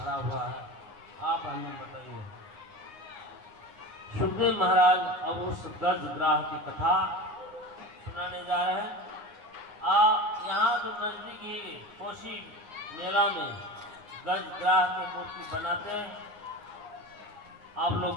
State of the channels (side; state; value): left; late; 9.7 ms